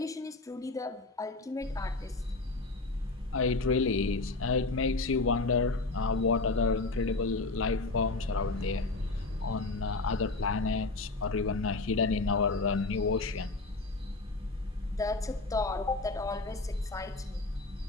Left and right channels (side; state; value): right; quieter; 3.4 dB